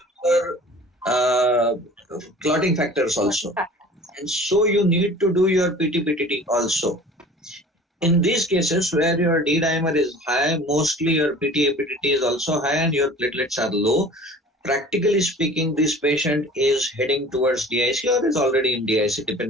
your clotting factors also. And so you need to do your PT-PTT also. In these cases where your D-dimer is high, mostly your PT-PTT is also high and your platelets are low. Practically speaking, this patient is heading towards DIC or is already in DIC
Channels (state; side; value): normal; both; correlation 0.44